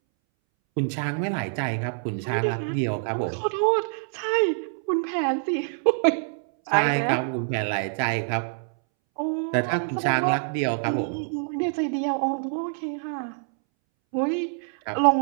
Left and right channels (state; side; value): silent; left; 61 dB below the other